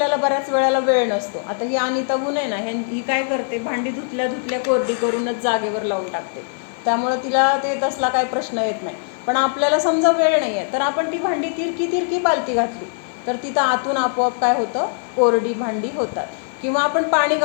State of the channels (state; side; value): silent; right; 58 dB below the other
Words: बऱ्याच वेळेला वेळ नसतो. आता ही अनिता गुण आहे ना, ही काय करते, भांडी धुतल्या कोरडी करूनच जागेवर लावून टाकते. त्यामुळं तिला ते तसला काय प्रश्न येत नाही. पण आपल्याला समजा वेळ नाही आहे तर आपण ती भांडी तिरकी पालती घातली तर तिथं आतून आपोआप काय होतं, कोरडी भांडी होतात. किंवा आपण पाणी